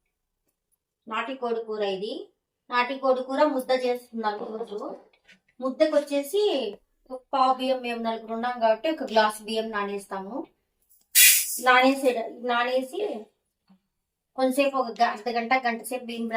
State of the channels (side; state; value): both; identical; correlation 1.00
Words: ఇది నాటికోడి కూర ముద్ద చేస్తున్నాను ఈరోజు. ముద్దకు వచ్చేసి ఒక పావు బియ్యం, మేము నలుగురు ఉన్నాం కాబట్టి ఒక గ్లాస్ బియ్యం నానేస్తాము. నానేసి కొంతసేపు ఒక అర్ధ గంట సేపు బియ్యం